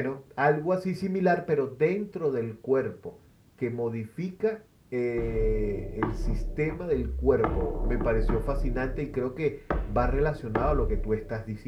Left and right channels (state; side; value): identical; both; correlation 1.00